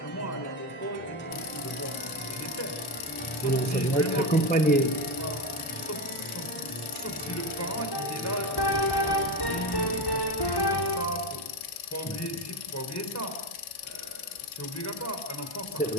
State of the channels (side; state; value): right; late; 1.1 ms